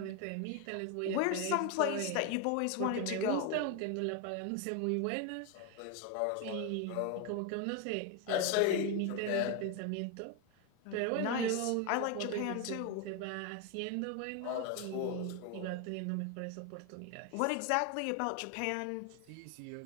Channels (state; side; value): different; both; correlation 0.01